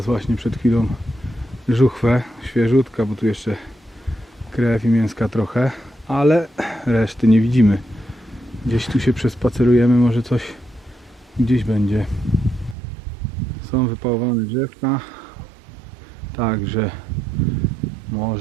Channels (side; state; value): left; drops out; at 12.8 s